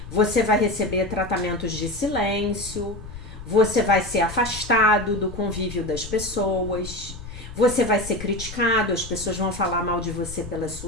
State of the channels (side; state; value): left; noise; rumble, 13 dB below the sound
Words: você vai receber tratamentos de silêncio, você vai ser afastado do convívio das pessoas, você vai ser criticado, as pessoas vão falar mal de você pelas